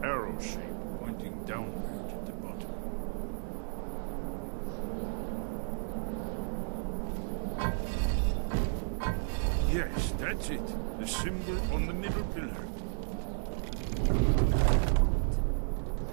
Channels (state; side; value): silent; left; digital silence